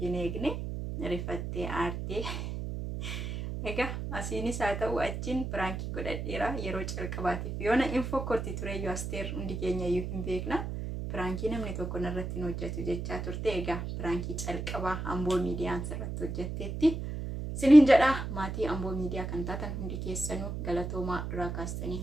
hin eegne rifattee aartee. Egaa asiinis haa ta'u achiin pirankii godhadheera yeroo calqabaatiif yoona info korti tureyyuu Asteer hundi keenya iyyuu hin beekna. Pirankii namni tokko narratti hin hojjetu jechaa turte. Egaa pirankii calqabaa Amboo miidiyaan sirratti hojjetteetti. Siniin jedha maatii Amboo miidiyaa kan taatan hundi keessanuu galatoomaa duraa kaastanii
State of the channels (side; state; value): right; noise; hum, 5 dB below the sound